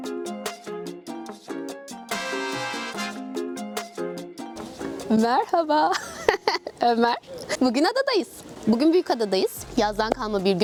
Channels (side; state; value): both; identical; correlation 1.00